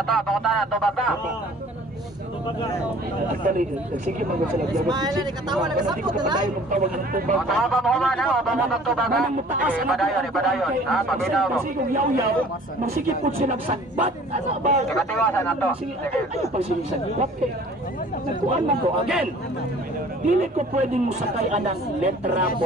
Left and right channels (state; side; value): normal; both; correlation 0.50